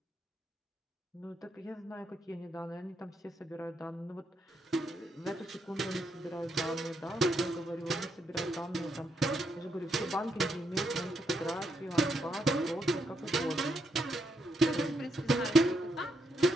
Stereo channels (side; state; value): both; normal; correlation 0.79